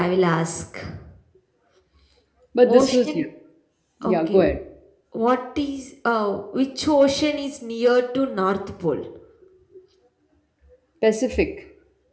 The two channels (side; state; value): both; identical; correlation 1.00